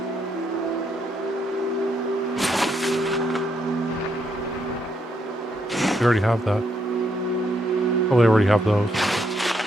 We already have that. Probably already have those.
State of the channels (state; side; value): normal; both; correlation 0.76